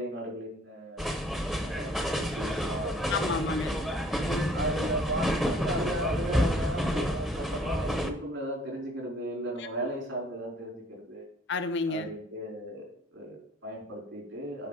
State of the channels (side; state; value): both; normal; correlation 0.57